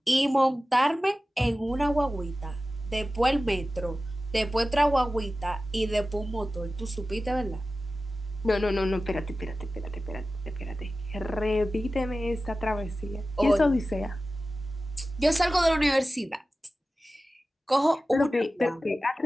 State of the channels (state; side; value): normal; both; correlation 0.95